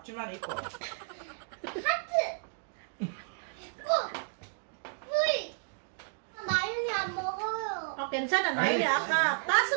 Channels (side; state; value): left; silent; digital silence